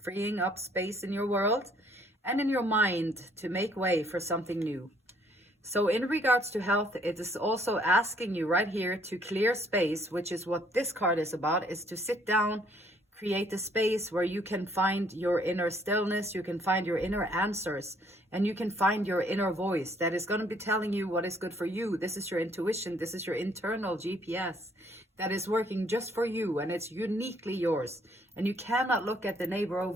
freeing up space in your world and in your mind to make way for something new. So in regards to health, it is also asking you right here to clear space, which is what this card is about, is to sit down, create a space where you can find your inner stillness, you can find your inner answers, and you can find your inner voice that is going to be telling you what is good for you. This is your intuition. This is your internal GPS that is working just for you, and it's uniquely yours. And you cannot look at the neighbor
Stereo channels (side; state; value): both; normal; correlation 0.64